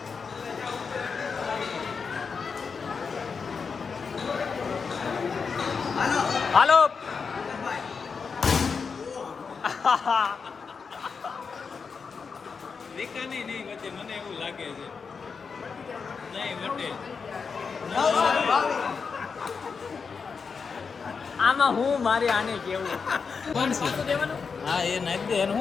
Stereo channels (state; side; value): quieter; right; 5.5 dB